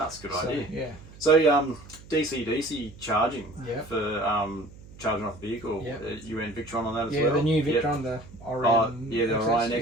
a good idea. Yeah. So DC charging for charging off the vehicle. You went Victron on that as well? Yeah, the new Victron, the Orion. The Orion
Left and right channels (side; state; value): right; noise; hum, 20 dB below the sound